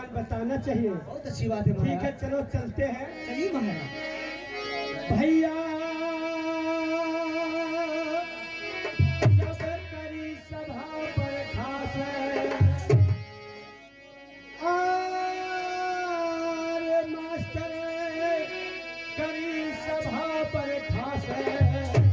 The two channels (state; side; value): identical; both; correlation 1.00